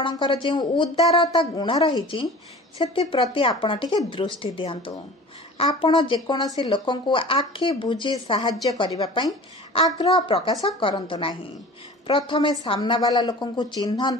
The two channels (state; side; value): normal; both; correlation 0.40